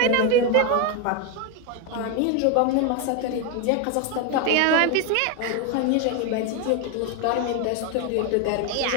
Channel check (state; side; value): different; both; correlation 0.02